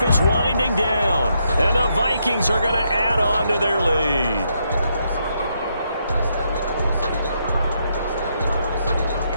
is winding down, and the Vikings are going to add on to their lead.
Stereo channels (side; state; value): both; inverted; correlation -0.78